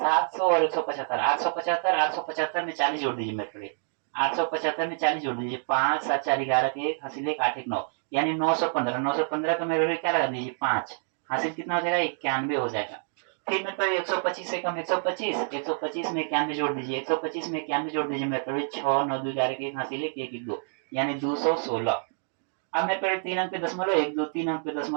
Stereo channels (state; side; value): silent; left; 60 dB below the other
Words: और 175, 875, 875 में 40 जोड़ दीजिए मेरे पर, 875 में 40 जोड़ दीजिए, 5 7 4 11 के 1 हासिल 1 8 1 9, यानी 915, 915 का मेरे क्या लगा दीजिए 5, हासिल कितना हो जाएगा 91 हो जाएगा। फिर मेरे पर 125 से कम 125, 125 में 91 जोड़ दीजिए, 125 में 91 जोड़ दीजिए मेरे पर 6 9 2 11 के 1 हासिल 1 1 2, यानी 216। अब मेरे पे 3 अंक पे दशमलव 1 2 3 अंक पे